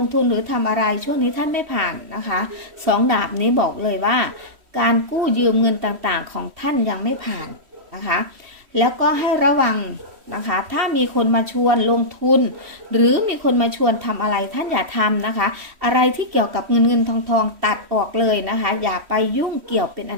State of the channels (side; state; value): left; late; 3.1 ms